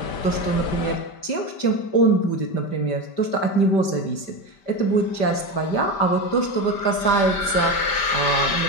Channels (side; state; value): right; late; 5.1 ms